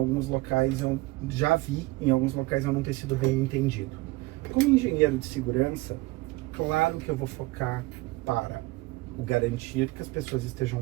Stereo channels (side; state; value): left; quieter; 21.2 dB